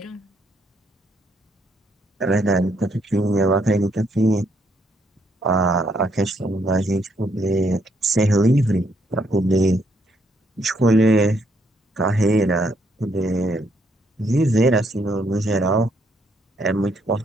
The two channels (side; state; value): both; normal; correlation 0.72